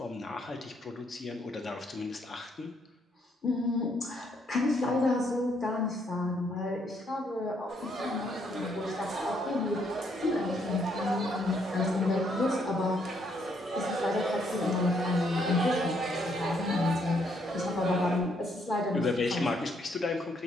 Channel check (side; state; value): both; normal; correlation 0.72